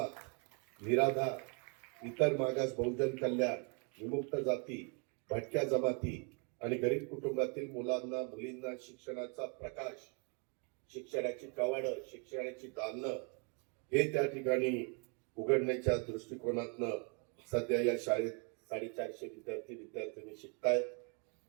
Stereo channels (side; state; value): left; quieter; 35.7 dB